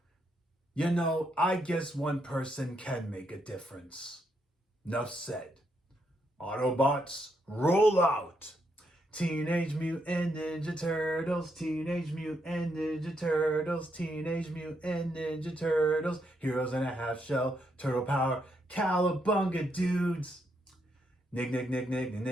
You know, I guess one person can make a difference. Enough said. Autobots, roll out! Teenage Mutant Ninja Turtles, Teenage Mutant Ninja Turtles, Teenage Mutant Ninja Turtles, Heroes in a Half Shell, Turtle Power, Cowabunga dudes. Nick,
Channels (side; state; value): both; normal; correlation 0.78